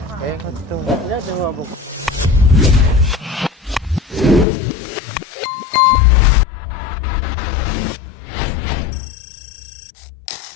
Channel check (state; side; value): drops out; right; at 4.5 s